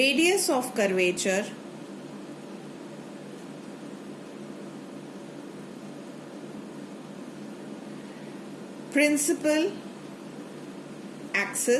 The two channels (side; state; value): both; identical; correlation 1.00